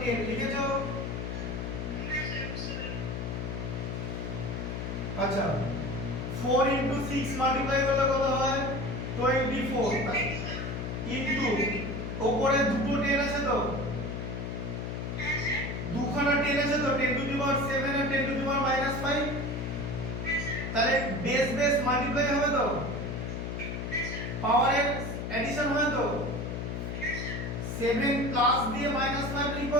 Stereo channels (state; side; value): noise; left; hum, 4 dB below the sound